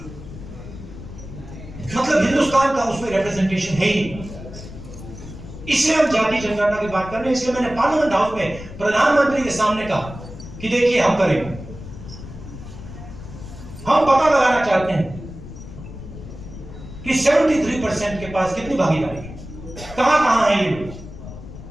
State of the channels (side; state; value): left; noise; rumble, 13 dB below the sound